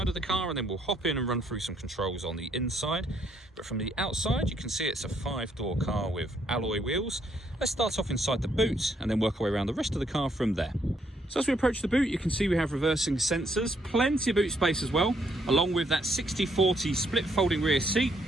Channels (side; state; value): both; normal; correlation 0.71